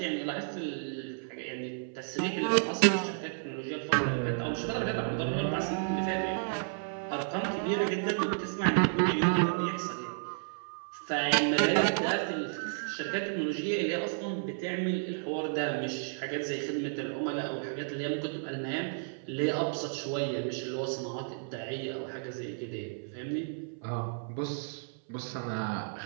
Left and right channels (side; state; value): left; silent; 56 dB below the other